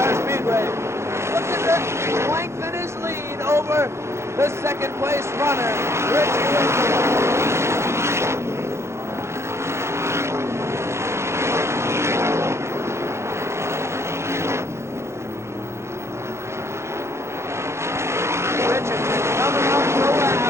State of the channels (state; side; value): late; left; 0.13 ms